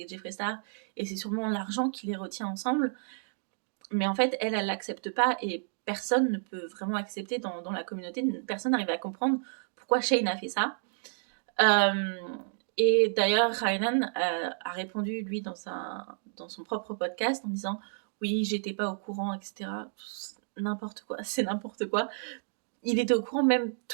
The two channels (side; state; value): left; silent; digital silence